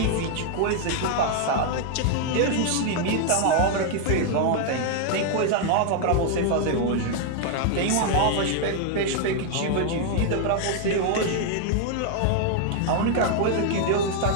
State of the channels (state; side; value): different; both; correlation 0.00